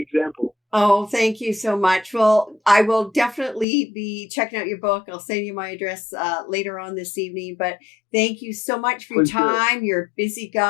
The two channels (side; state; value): right; drops out; at 3.7 s